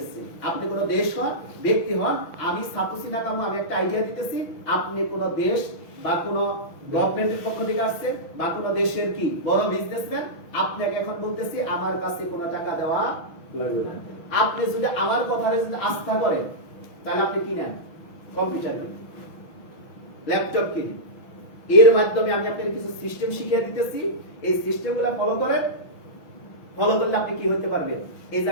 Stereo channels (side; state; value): right; late; 6.1 ms